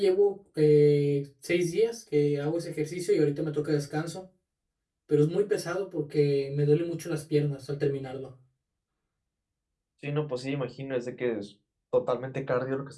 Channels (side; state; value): both; identical; correlation 1.00